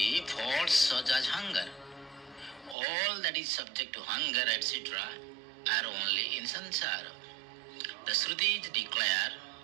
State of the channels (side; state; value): left; drops out; at 2.8 s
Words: faults such as hunger. All that is subject to hunger etc. are only in samsara. The Shrutis declare